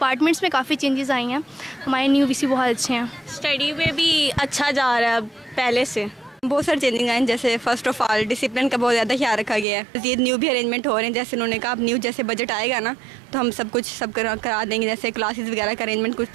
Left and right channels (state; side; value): drops out; left; at 9.7 s